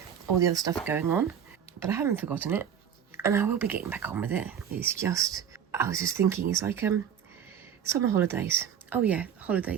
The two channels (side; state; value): left; quieter; 8.5 dB